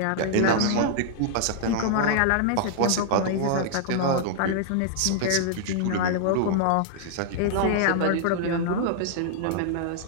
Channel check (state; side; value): different; both; correlation -0.01